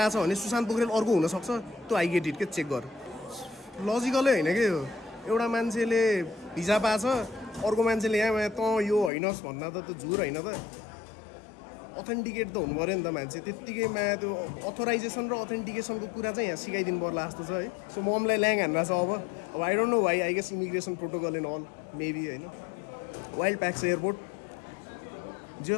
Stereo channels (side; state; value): right; drops out; at 9.1 s